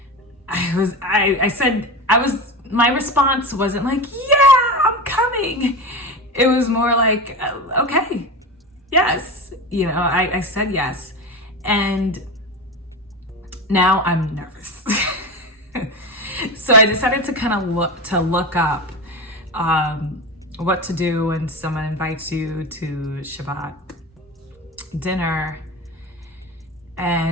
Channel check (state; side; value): normal; both; correlation 0.24